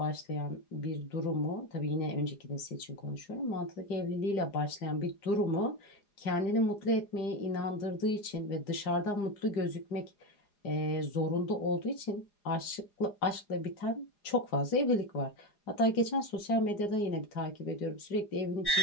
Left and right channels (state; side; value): late; right; 4.9 ms